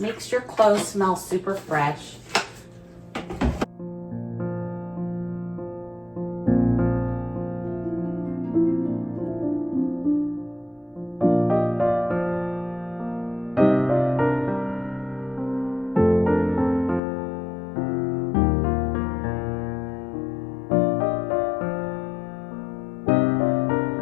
makes your clothes smell super fresh.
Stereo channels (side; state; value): right; drops out; at 17.0 s